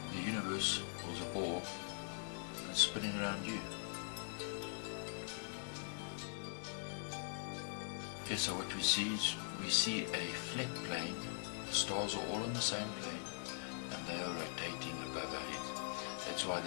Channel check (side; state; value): right; silent; digital silence